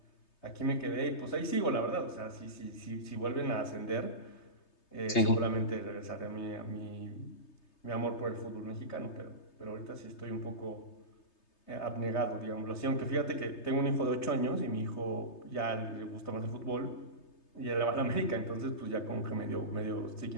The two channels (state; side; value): late; right; 3.3 ms